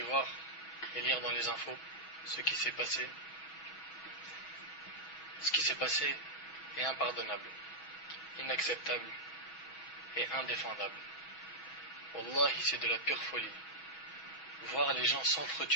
voir et lire dans les infos, ce qui s'est passé est impardonnable, inacceptable et indéfendable. Wallahi, c'est de la pure folie. Voir les gens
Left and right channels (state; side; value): late; right; 6.2 ms